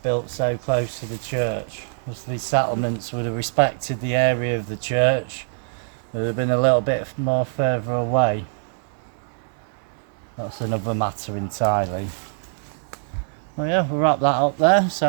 built so close to the church. As these settlements would have respected the area of the church. It would have been a little bit more further away. That's another matter entirely. Well yeah, we'll wrap that up there.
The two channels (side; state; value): left; silent; digital silence